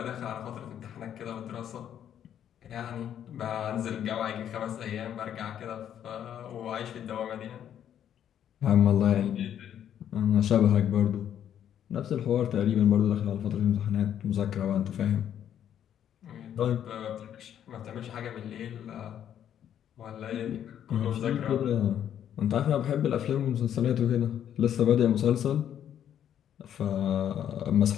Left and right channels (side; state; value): right; quieter; 9.9 dB